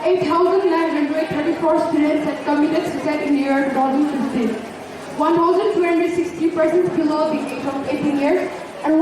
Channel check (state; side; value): identical; both; correlation 1.00